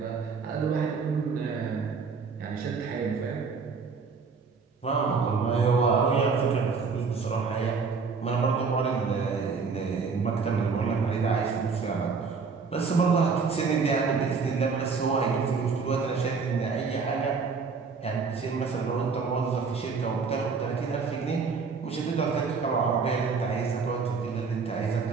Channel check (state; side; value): quieter; left; 5.1 dB